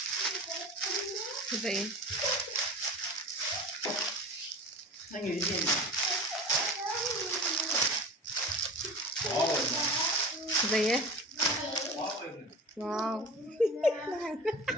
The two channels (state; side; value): normal; both; correlation 0.35